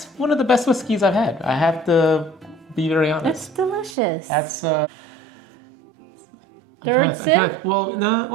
one of the best whiskeys I've had. I have to be very honest. It's delicious. That's Third sip?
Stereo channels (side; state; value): left; drops out; at 4.0 s